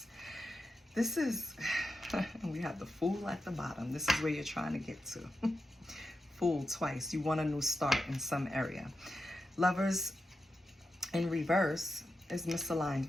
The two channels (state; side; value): normal; both; correlation 0.89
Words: This is, we have the Fool at the bottom. This is where you're trying to get to. Fool twice. You want a new start in some area. Lovers in reverse is misaligned